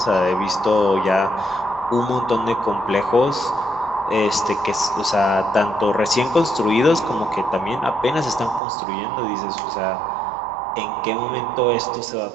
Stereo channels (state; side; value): drops out; left; at 8.6 s